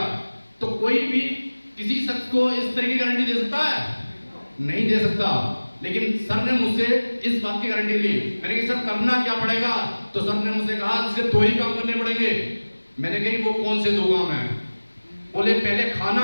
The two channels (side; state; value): both; inverted; correlation -1.00